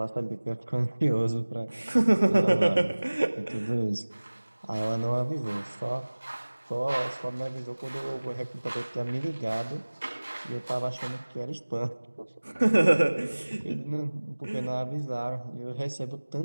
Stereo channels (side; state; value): both; inverted; correlation -1.00